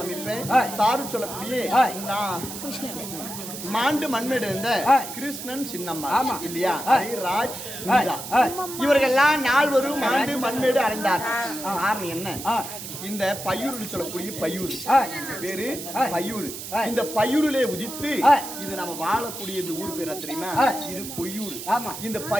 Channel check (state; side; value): noise; right; hiss, 9 dB below the sound